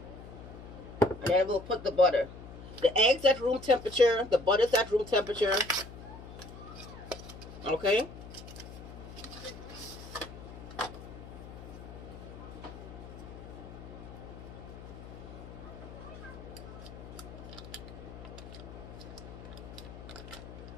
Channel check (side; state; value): left; noise; hum, 13 dB below the sound